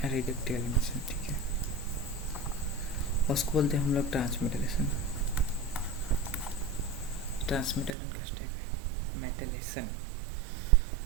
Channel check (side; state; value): left; drops out; at 8.0 s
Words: reductive elimination. ठीक है, उसको बोलते हैं हम लोग ट्रांसमेटालेशन। ट्रांसमेटालेशन का स्टेप है मेटालेशन।